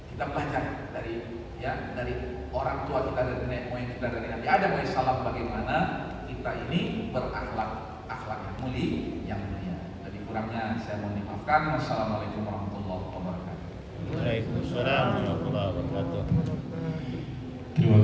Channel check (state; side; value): identical; both; correlation 1.00